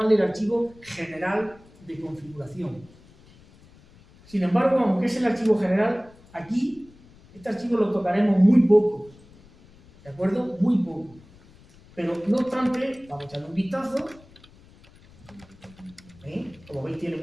el archivo general de configuración. Sin embargo, aunque es el archivo general, aquí este archivo lo tocaremos muy poco, ¿de acuerdo? Muy poco. Pero no obstante, vamos a echarle un vistazo. Como veis, tiene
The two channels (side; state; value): left; noise; rumble, 25 dB below the sound